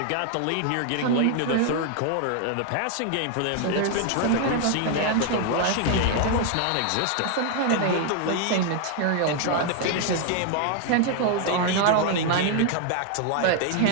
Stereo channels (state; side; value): different; both; correlation 0.00